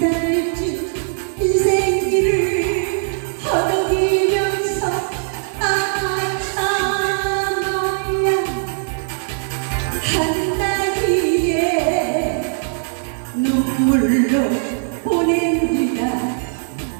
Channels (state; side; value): silent; left; digital silence